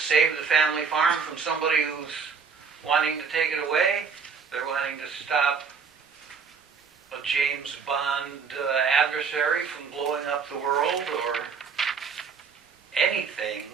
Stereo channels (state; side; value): quieter; left; 5.8 dB